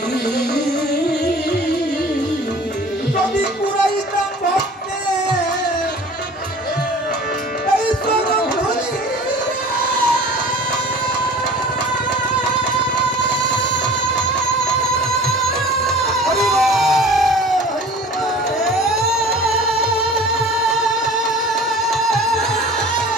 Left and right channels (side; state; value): both; normal; correlation 0.44